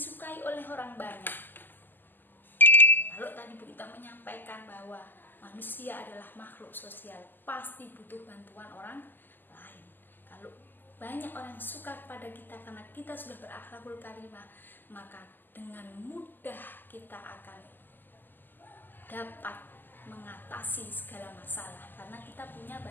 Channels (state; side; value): late; right; 0.090 ms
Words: oleh orang banyak. Kalau tadi Bu Ita menyampaikan bahwa manusia adalah makhluk sosial, pasti butuh bantuan orang lain. Kalau banyak orang suka kepada kita karena kita sudah berakhlakul karimah, maka dengan mudah kita akan dapat mengatasi segala masalah, karena kita punya